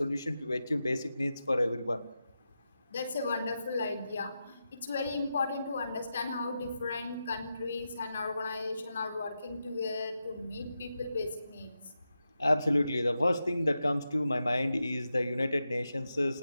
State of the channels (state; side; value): inverted; both; correlation -0.89